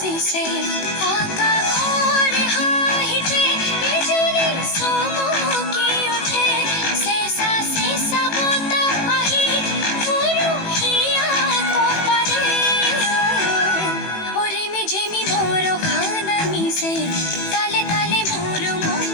से आका घोर हाहिते बिजुली सोमोकी उठे सेसा बोता आही पुरुहिया कोपाले ओरे में जेमी मोरो खाना मिसे ताले ताले मोरो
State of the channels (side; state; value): right; late; 18 ms